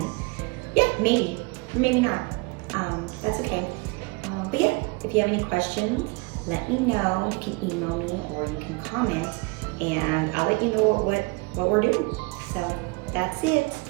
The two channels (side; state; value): left; quieter; 26.5 dB